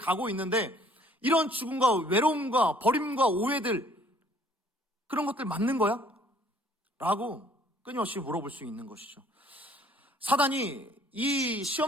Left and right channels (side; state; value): both; normal; correlation 0.59